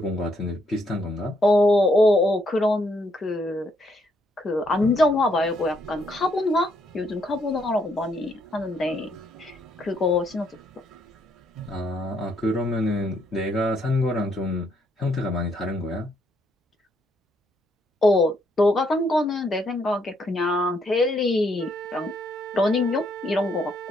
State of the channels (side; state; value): both; normal; correlation 0.73